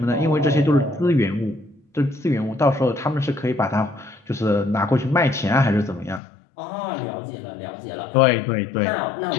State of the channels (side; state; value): right; drops out; at 6.2 s